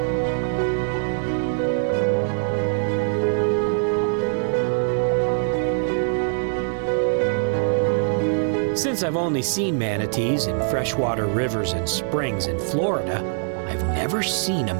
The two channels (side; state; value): left; silent; digital silence